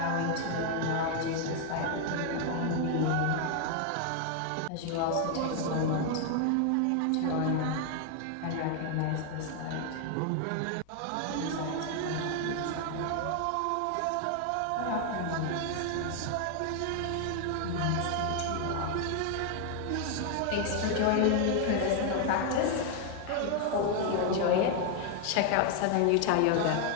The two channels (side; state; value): both; different; correlation 0.00